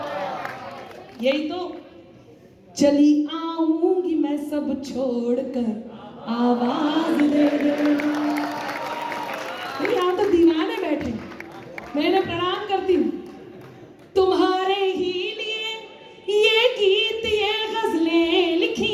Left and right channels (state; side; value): identical; both; correlation 1.00